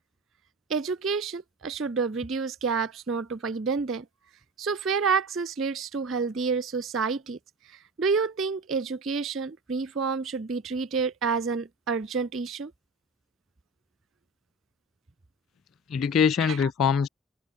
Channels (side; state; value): both; normal; correlation 0.30